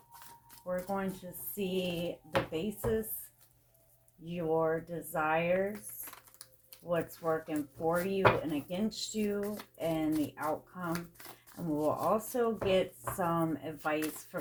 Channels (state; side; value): identical; both; correlation 1.00